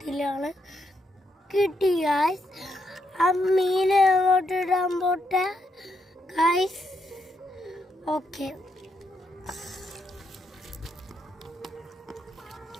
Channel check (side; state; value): both; normal; correlation 0.79